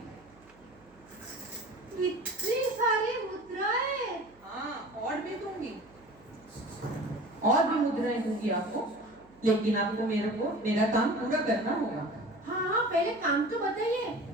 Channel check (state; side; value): noise; right; hum, 29 dB below the sound